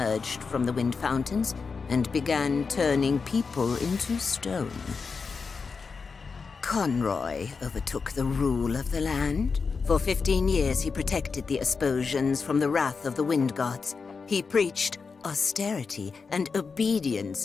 from the wind fountains and began turning people into stone. Conroy overtook the rule of the land. For 15 years he protected the Asposians from the wrath of the wind gods. He preached austerity and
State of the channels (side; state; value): right; quieter; 5.0 dB